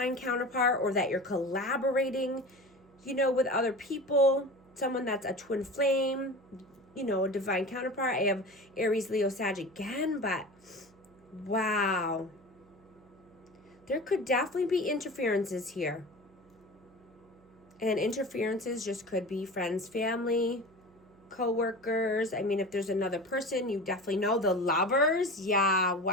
counterpart, or that you're collaborating, you know, with other people. Someone that's a twin flame, you know, a divine counterpart. I have Aries, Leo, Sag again, but wow. There could definitely be interferences here. And interferences just could be friends, family, co-workers. I mean, if there's another person, you definitely know. The lovers, yeah,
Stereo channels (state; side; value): noise; right; hum, 28 dB below the sound